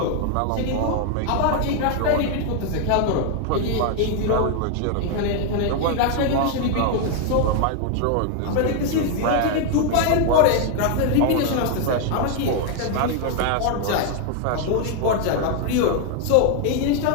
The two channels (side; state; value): both; different; correlation 0.00